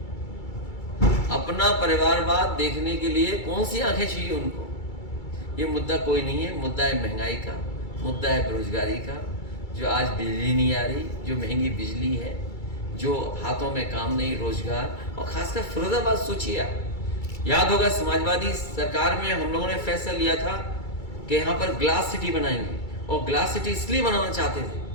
अपना परिवारवाद देखने के लिए कौन सी आंखें चाहिए उनको? ये मुद्दा कोई नहीं है। मुद्दा है महंगाई का, मुद्दा है बेरोजगारी का। जो आज बिजली नहीं आ रही, जो महंगी बिजली है, जो हाथों में काम नहीं, रोजगार, और खासकर फिरोजाबाद सोचिए आप, याद होगा समाजवादी सरकार में हम लोगों ने फैसला लिया था कि यहाँ पर ग्लास सिटी बनाएंगे, और ग्लास सिटी इसलिए बनाना चाहते थे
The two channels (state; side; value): late; right; 2.3 ms